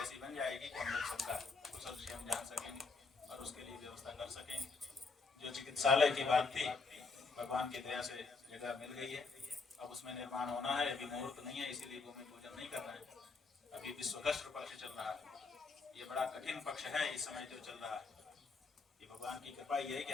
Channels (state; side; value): quieter; right; 4.3 dB